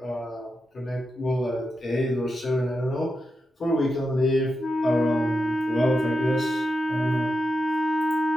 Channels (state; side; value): normal; both; correlation 0.88